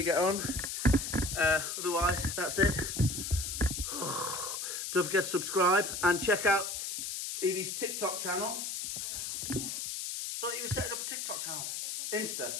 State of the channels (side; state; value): left; noise; hiss, 4 dB below the sound